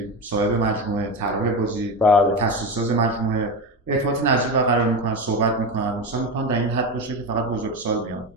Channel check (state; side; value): normal; both; correlation 0.20